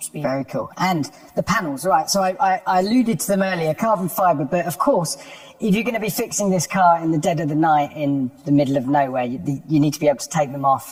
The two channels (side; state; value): both; identical; correlation 1.00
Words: speed. Very cool. And the panels, right? So I alluded to them earlier, carbon fibre, but of course, if you're going to be fixing this car in the dead of the night in the middle of nowhere, you need to be able to take them